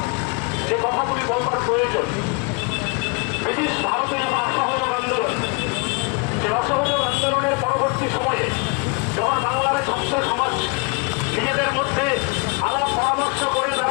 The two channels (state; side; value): quieter; right; 32.4 dB